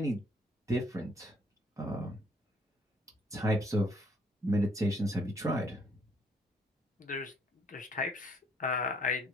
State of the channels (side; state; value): both; normal; correlation 0.64